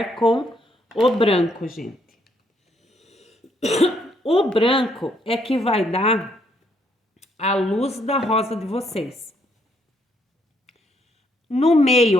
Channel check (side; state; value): both; normal; correlation 0.71